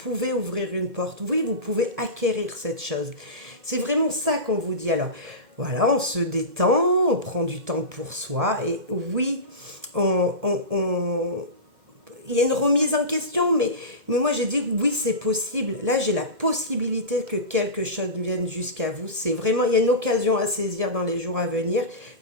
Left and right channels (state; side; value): late; left; 2.1 ms